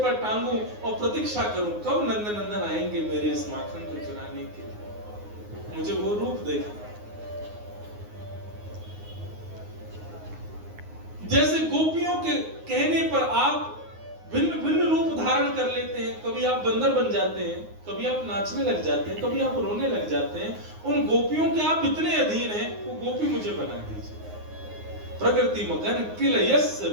पर टांगूं और प्रतीक्षा करूं कब नंदन नंदन आएंगे मेरे इस माखन को चुराने के लिए। मुझे वो रूप देखना। जैसे गोपियों के कहने पर आप भिन्न भिन्न रूप धारण कर लेते हैं, कभी आप बंदर बन जाते हैं, कभी आप नाचने लग जाते हैं, कभी आप रोने लग जाते हैं, उन गोपियों के आप इतने अधीन हैं, वो गोपी मुझे बना दीजिए। प्रकृति मगन किलयस्य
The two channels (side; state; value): left; late; 9.6 ms